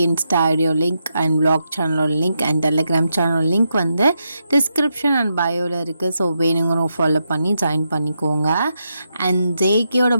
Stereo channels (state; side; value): inverted; both; correlation -0.84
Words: இன்ஸ்டா ஐடியோ லிங்க் அண்ட் வ்ளாக் சேனலோட லிங்க் அண்ட் டெலிகிராம் சேனலோட லிங்க் வந்து டிஸ்கிரிப்ஷன் அண்ட் பயோவில் இருக்குது. ஸோ வேணுங்கிறவங்க ஃபாலோ பண்ணி ஜாயின் பண்ணிக்கோங்க. அண்ட் ஜேகேயோட